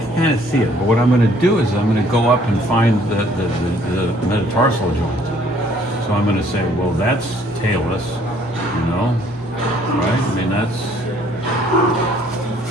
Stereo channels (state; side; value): normal; both; correlation 0.61